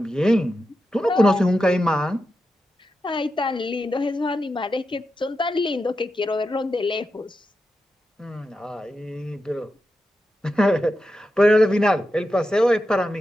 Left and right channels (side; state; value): both; normal; correlation 0.89